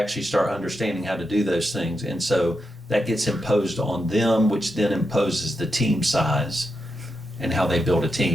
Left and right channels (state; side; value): normal; both; correlation 0.86